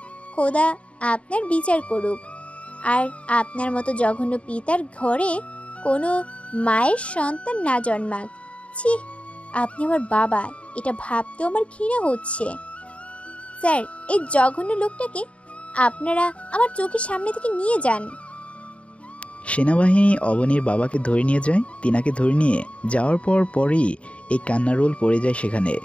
খোদা আপনার বিচার করুক। আর আপনার মতো জঘন্য পিতার ঘরে কোনো মায়ের সন্তান না জন্মাক। ছি, আপনি আমার বাবা, এটা ভাবতেও আমার ঘৃণা হচ্ছে। স্যার, এই জঘন্য লোকটাকে আপনারা আমার চোখের সামনে থেকে নিয়ে যান। সেনাবাহিনী অবনীর বাবাকে ধরে নিয়ে যায়। তিনাকে ধরে নিয়ে যাওয়ার পরই এই কান্নার রোল পড়ে যায় সেখানে।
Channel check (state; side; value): late; right; 0.062 ms